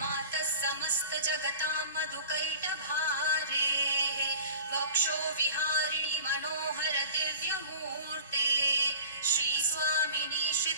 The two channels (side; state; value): both; inverted; correlation -0.39